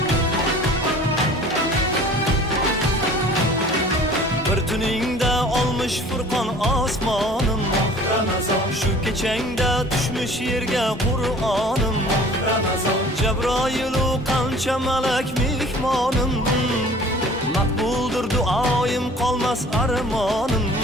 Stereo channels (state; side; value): normal; both; correlation 0.48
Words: Bir tuningda olmuş Furqon osmonim Ramazon. Shu kechangda tushmish yerga Qur'onim Ramazon. Jabroilu qancha malak mehmonim, maqbuldir duoyim, qolmas armonim.